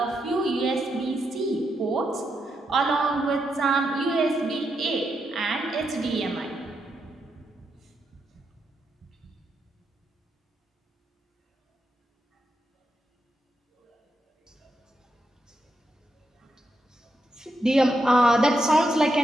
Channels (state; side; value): normal; both; correlation 0.83